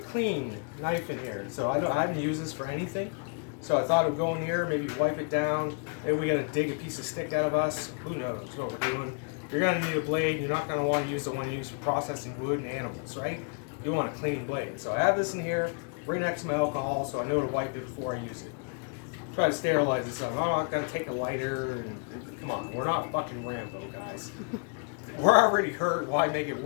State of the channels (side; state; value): right; quieter; 38.3 dB